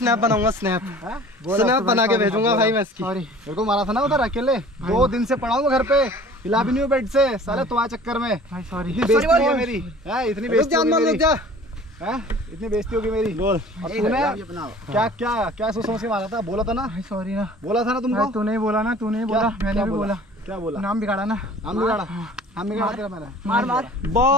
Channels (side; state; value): both; normal; correlation 0.47